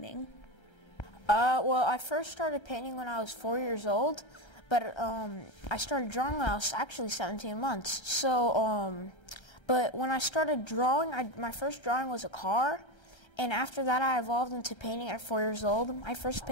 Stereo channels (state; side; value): late; right; 1.3 ms